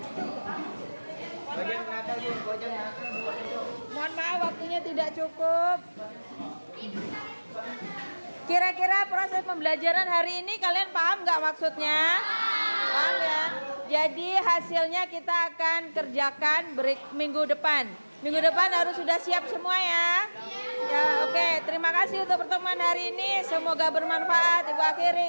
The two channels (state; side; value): inverted; both; correlation -1.00